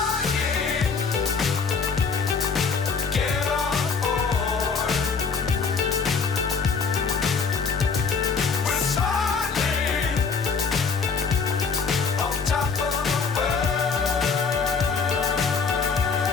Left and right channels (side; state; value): right; quieter; 5.3 dB